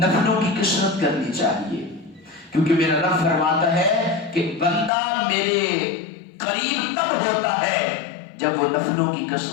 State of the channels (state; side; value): drops out; right; at 4.9 s